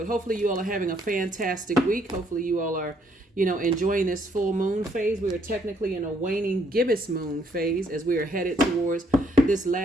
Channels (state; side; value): normal; both; correlation 0.69